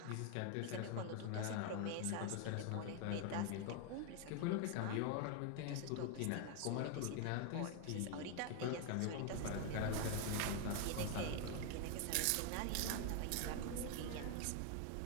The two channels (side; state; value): both; different; correlation 0.01